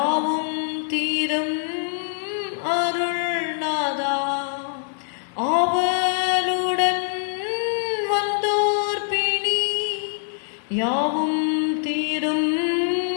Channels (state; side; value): silent; right; 62 dB below the other